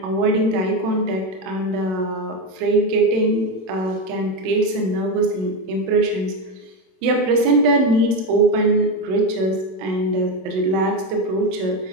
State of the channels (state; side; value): late; left; 27 ms